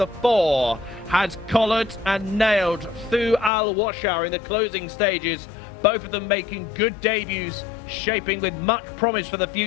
4, has collared and nailed Thu Al Washar in the closing stages. Both of them making good debuts, shaping with much promise for the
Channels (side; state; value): right; drops out; at 3.5 s